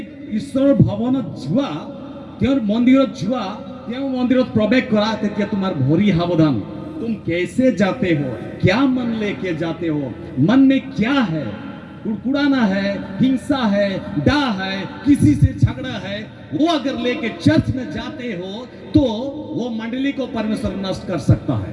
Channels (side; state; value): both; identical; correlation 1.00